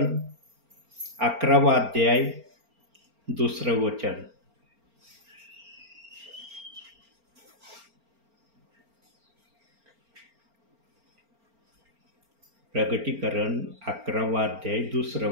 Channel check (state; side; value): late; left; 4.4 ms